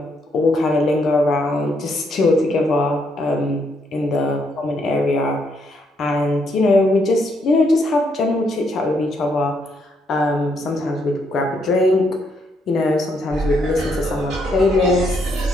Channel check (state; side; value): normal; both; correlation 0.74